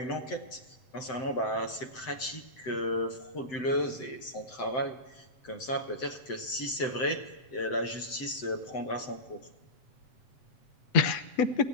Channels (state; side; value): late; right; 7.8 ms